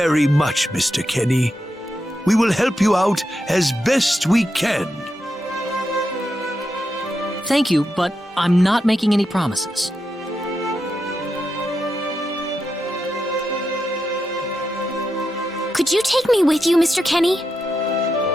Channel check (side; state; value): both; normal; correlation 0.86